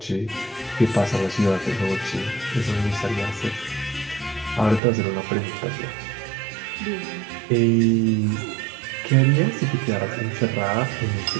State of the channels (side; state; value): left; drops out; at 4.8 s